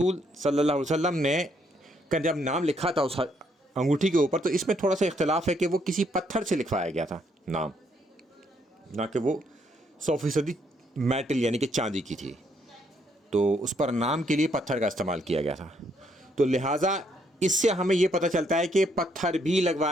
صلی اللہ علیہ وسلم نے جب نام لکھا تھا اس انگوٹھی کے اوپر، تو اس میں تھوڑا سا اختلاف ہے کہ وہ کسی پتھر سے لکھوایا گیا تھا نام، نہ کہ وہ 100% میٹل یعنی کہ چاندی کی تھی، تو اس پر نام کے لیے پتھر کا استعمال کیا گیا تھا۔ تو لہٰذا اس سے ہمیں یہ پتہ چلتا ہے کہ پتھر بھی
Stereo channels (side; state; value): both; normal; correlation 0.72